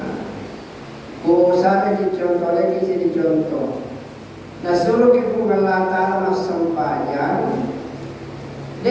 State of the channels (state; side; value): identical; both; correlation 1.00